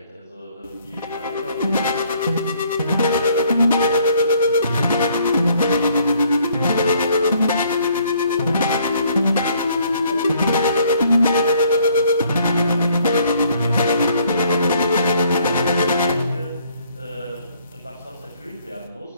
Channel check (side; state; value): both; inverted; correlation -0.64